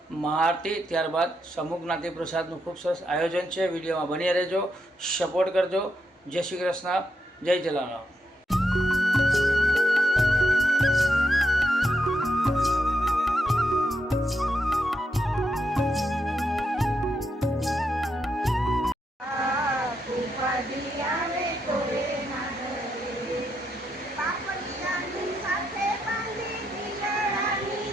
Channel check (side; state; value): both; normal; correlation 0.82